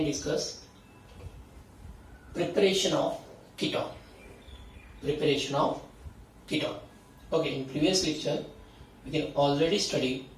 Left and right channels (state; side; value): identical; both; correlation 1.00